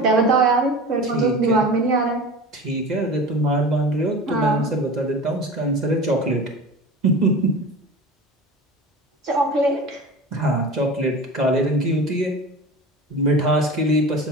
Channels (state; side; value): normal; both; correlation 0.34